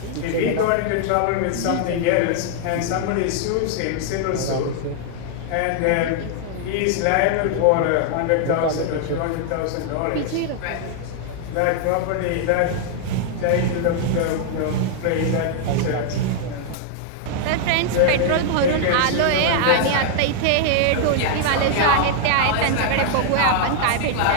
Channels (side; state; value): both; different; correlation 0.00